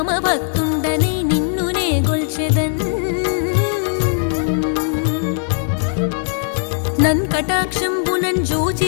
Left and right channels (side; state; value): right; silent; 67 dB below the other